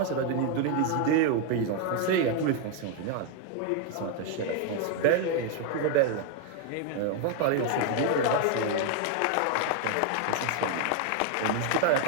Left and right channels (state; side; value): different; both; correlation 0.00